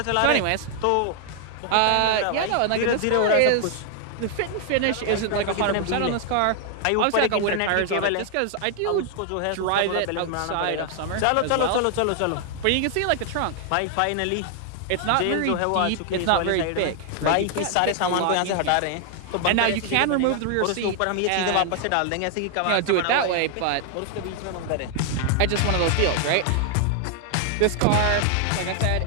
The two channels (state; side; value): different; both; correlation 0.00